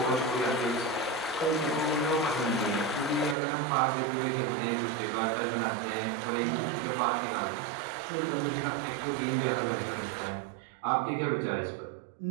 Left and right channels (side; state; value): left; drops out; at 3.4 s